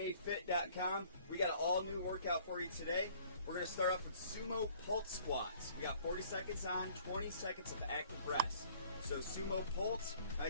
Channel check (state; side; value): inverted; both; correlation -0.56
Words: We got an all new workout for you today. We're going to start off with sumo pulse squats. We got 40 seconds on, 20 seconds of active rest. So sumo pulse,